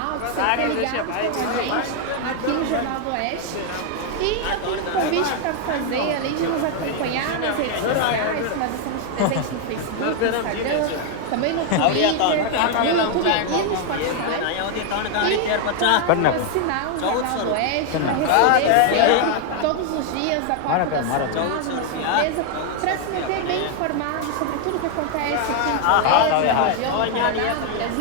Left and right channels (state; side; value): different; both; correlation 0.00